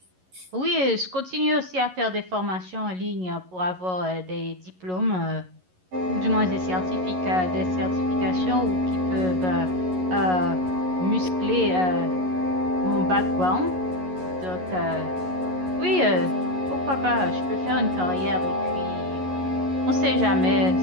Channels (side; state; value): left; late; 11 ms